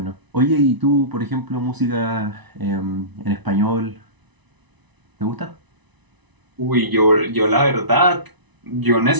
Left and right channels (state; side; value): late; left; 1.0 ms